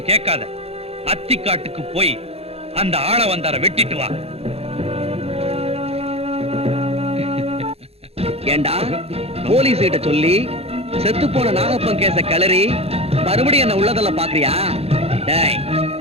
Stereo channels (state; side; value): late; left; 0.29 ms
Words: கேட்காத, அத்திக்காட்டுக்கு போய் அந்த ஆள வந்தார வெட்டிட்டு வா. ஏண்டா, போலீஸ் கிட்ட சொல்லி செத்து போன நாகப்பன் கேச கிளறி மறுபடியும் என்ன உள்ளதல்ல பாக்குறியா? டேய்,